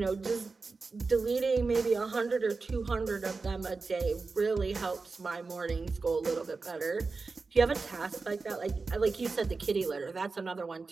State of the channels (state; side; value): quieter; left; 4.2 dB